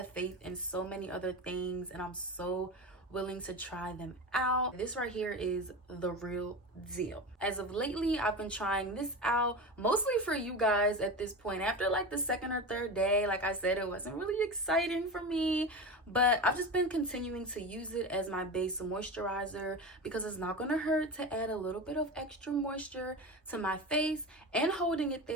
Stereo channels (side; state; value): both; normal; correlation 0.25